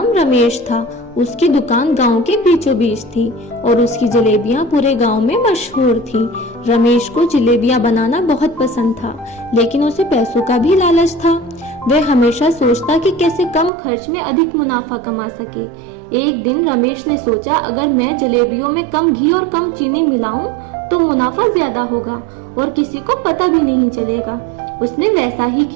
रमेश था। उसकी दुकान गांव के बीचों बीच थी और उसकी जलेबियां पूरे गांव में मशहूर थी। रमेश को जलेबियां बनाना बहुत पसंद था, लेकिन उसे पैसों का भी लालच था। वह हमेशा सोचता कि कैसे कम खर्च में अधिक मुनाफा कमा सके। एक दिन रमेश ने सोचा, अगर मैं जलेबियों में कम घी और कम चीनी मिलाऊं तो मुनाफा ज्यादा होगा और किसी को पता भी नहीं चलेगा। उसने वैसा ही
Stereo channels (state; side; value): drops out; left; at 13.7 s